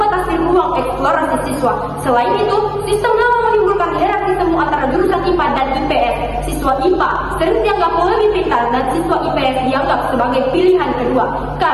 ruang eksplorasi siswa. Selain itu, sistem lama menimbulkan hierarki semu antara jurusan IPA dan IPS. Siswa IPA sering dianggap lebih pintar dan siswa IPS dianggap sebagai pilihan kedua.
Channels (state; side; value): identical; both; correlation 1.00